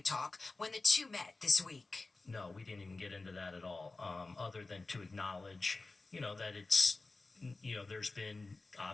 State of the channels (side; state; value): right; quieter; 3.4 dB